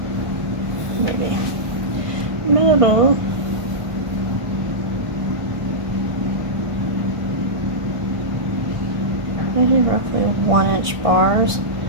Maybe. Middle. Maybe roughly 1-inch bars.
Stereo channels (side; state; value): left; late; 1.5 ms